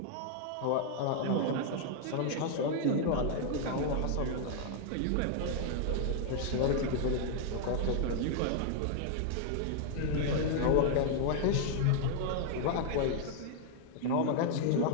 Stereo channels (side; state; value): both; different; correlation 0.00